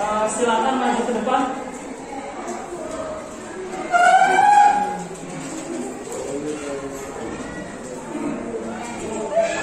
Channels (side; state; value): both; identical; correlation 1.00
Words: silakan maju ke depan.